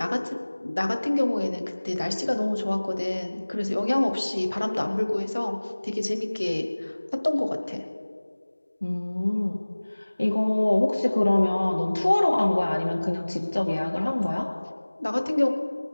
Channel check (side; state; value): both; inverted; correlation -1.00